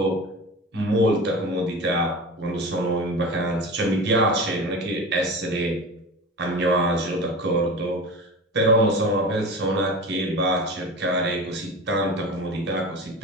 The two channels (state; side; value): normal; both; correlation 0.31